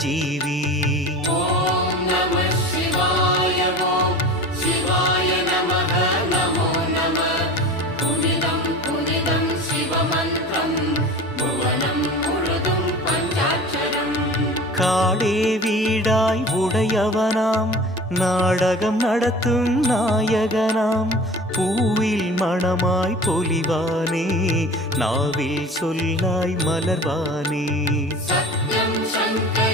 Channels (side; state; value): both; normal; correlation 0.38